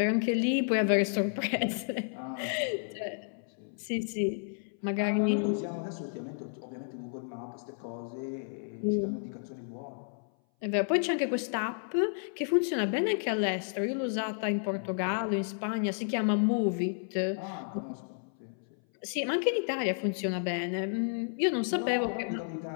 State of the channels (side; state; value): right; silent; 57 dB below the other